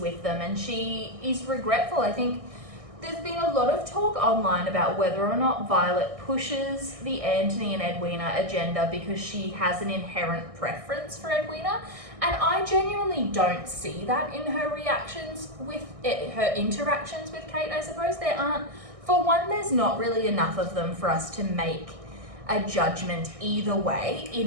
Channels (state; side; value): late; left; 1.6 ms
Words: them, and she is regretful. I think there's been a lot of talk online about whether or not Violet pushes the Anthony and Edwina agenda because she has an inherent preference for Edwina. And I genuinely don't see that in her reactions with it, her interactions with Kate, I suppose. There aren't, for one, there's not really enough of them for us to make a judgment either way,